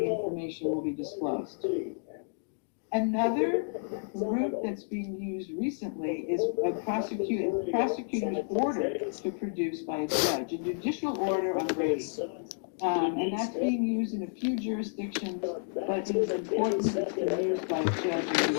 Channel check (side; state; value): right; silent; digital silence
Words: information will be disclosed. Another route that's being used recently is a prosecutor's order to produce by a judge, a judicial order on Brady. And that's being used in a few jurisdictions, but it is important that it's been used by